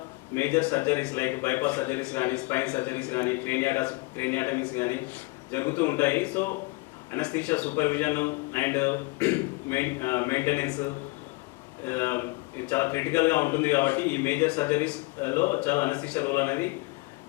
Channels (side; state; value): right; quieter; 25.0 dB